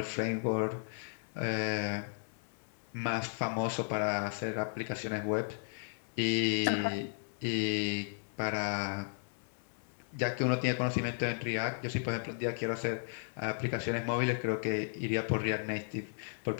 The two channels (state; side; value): silent; right; 55 dB below the other